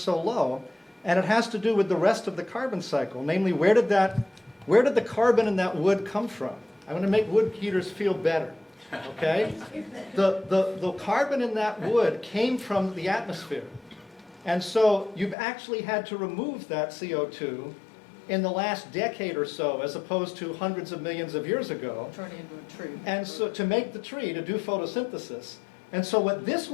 so low, and it has to do with the rest of the carbon cycle. Namely, where did the carbon in that wood come from? I want to make wood heaters feel better, okay? The carbon in that wood came from the atmosphere. And so you've actually had to remove that CO2 in the last decade or so, as opposed to hundreds of millions of years ago. Turn it into a tree. And so to make the tree, to do photosynthesis. And so what this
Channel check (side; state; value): right; drops out; at 15.4 s